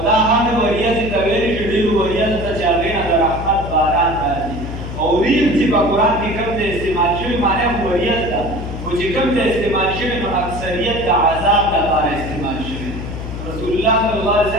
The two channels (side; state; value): left; noise; hum, 8 dB below the sound